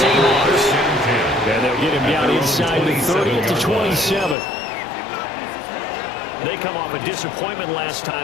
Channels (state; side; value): drops out; right; at 4.4 s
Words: Seahawks. And they'll get him down inside the 30-27. They come off a disappointment last